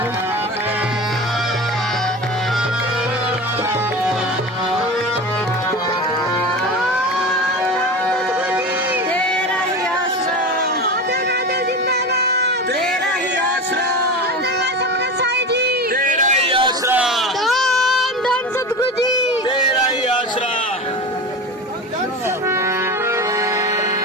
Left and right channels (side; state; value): both; normal; correlation 0.28